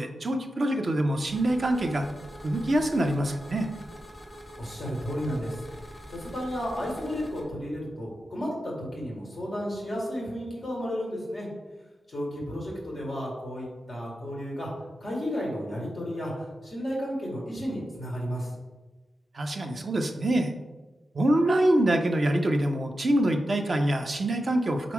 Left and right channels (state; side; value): normal; both; correlation 0.90